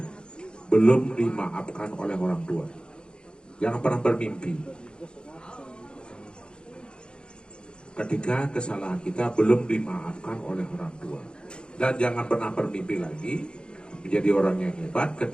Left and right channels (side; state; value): right; late; 0.051 ms